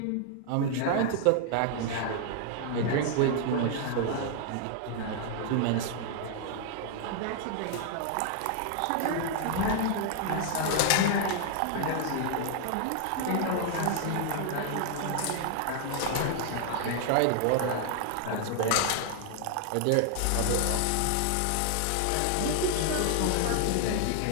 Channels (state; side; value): different; both; correlation 0.00